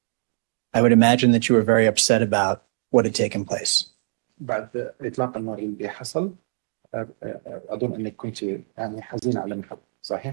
I would imagine that you were very upset about what had taken place. بعد إطلاق النار اللي حصل أظن أنك كنت يعني حزين على ما حدث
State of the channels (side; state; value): left; silent; digital silence